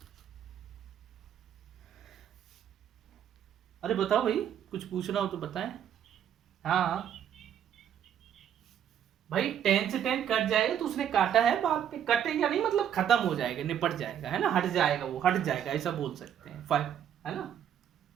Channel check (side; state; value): left; quieter; 9.5 dB